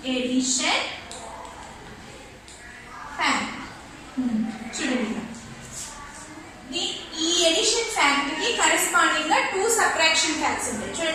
Addition fact. చూడండి, ఈ edition fact కి corresponding గా two subtraction facts ఉంటాయి.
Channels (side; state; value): both; identical; correlation 1.00